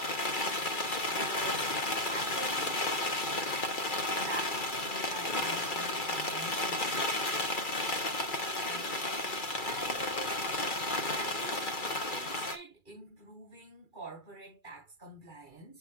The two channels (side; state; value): right; late; 2.3 ms